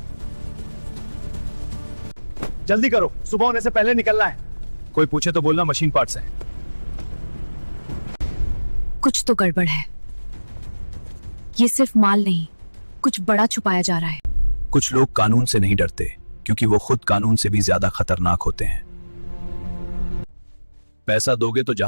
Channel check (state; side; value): inverted; both; correlation -1.00